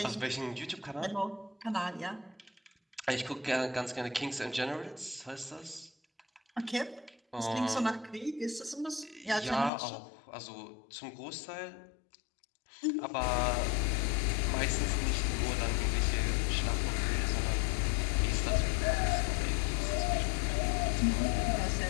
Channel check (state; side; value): drops out; right; at 9.7 s